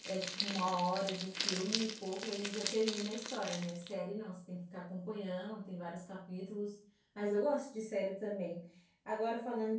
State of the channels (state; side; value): identical; both; correlation 1.00